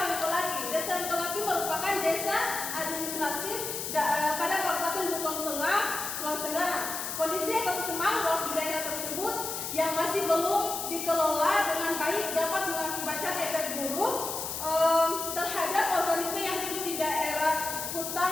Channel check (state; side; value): noise; left; hiss, 5 dB below the sound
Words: Desa Oyongkolaki merupakan desa administratif pada Kabupaten Buton Tengah, Sulawesi Tenggara. Kondisi ekosistem mangrove di daerah tersebut yang masih belum dikelola dengan baik dapat mengakibatkan efek buruk terhadap organisme yang hidup di daerah